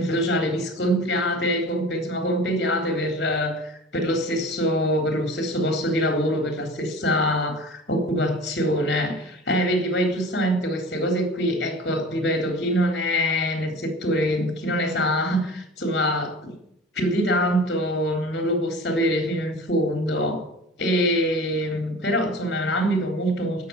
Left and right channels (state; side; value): normal; both; correlation 0.39